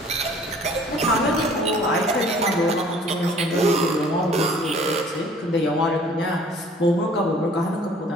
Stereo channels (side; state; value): both; normal; correlation 0.53